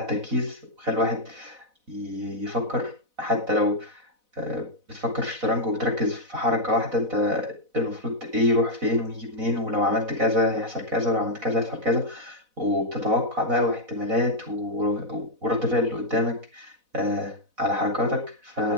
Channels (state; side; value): late; left; 4.0 ms